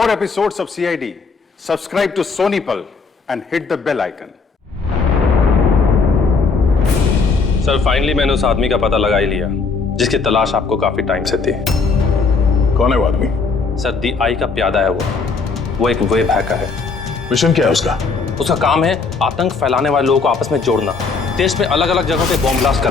episodes of CID, subscribe to Sony Pal and hit the bell icon. Sir finally मैंने उस आदमी का पता लगा ही लिया जिसकी तलाश आपको काफी टाइम से थी। कौन है वो आदमी? सर दी आई का प्यादा है वो एक वेब हैकर है। मिशन क्या है उसका? उसका काम है आतंक फैलाने वाले लोगों को आपस में जोड़ना, देश में अलग अलग जगहों पे बॉम्ब ब्लास्ट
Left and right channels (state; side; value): quieter; right; 4.6 dB